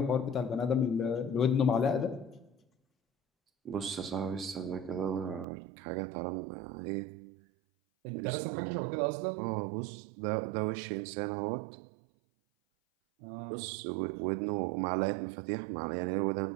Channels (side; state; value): left; drops out; at 5.5 s